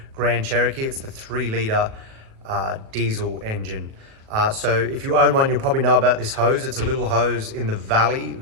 Grand Cherokee. It's the 3-litre diesel engine. So if you own one, you'll probably know about this hose. It's a little hose in the valley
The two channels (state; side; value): late; left; 37 ms